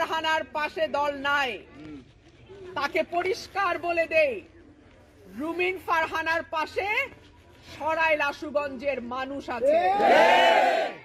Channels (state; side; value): identical; both; correlation 1.00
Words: পাশে দল নাই, তাকে পরিষ্কার বলে দেই, রুমিন ফারহানার পাশে সরাইল আশুগঞ্জের মানুষ আছে।